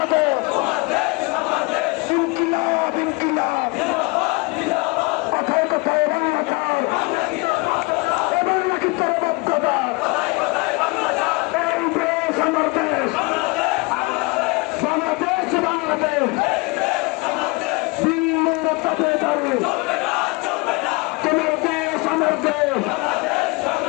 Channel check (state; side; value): quieter; right; 27.1 dB